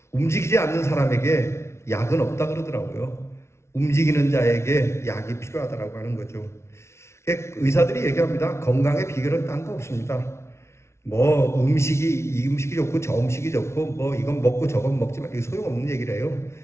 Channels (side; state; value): right; late; 0.13 ms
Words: 움직이지 않는 사람에게 약은 없다 그러더라고요. 움직이는 자에게 약이 필요하다고 하는 거죠. 의사들이 얘기합니다. 건강의 비결은 딴 거 없습니다. 뭐 이 음식이 좋고 저 음식이 좋고 뭐 이건 먹고 저건 먹지만 이게 소용없는 얘기래요.